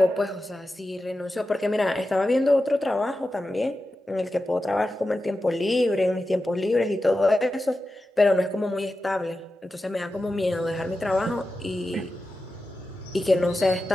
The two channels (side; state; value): both; normal; correlation 0.92